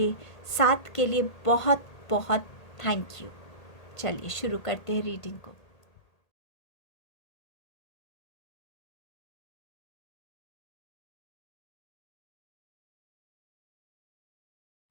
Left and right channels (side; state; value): right; late; 1.8 ms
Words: साथ के लिए बहुत बहुत थैंक यू। चलिए शुरू करते हैं रीडिंग को।